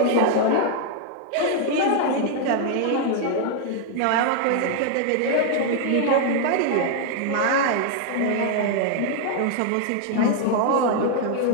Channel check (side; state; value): both; different; correlation 0.00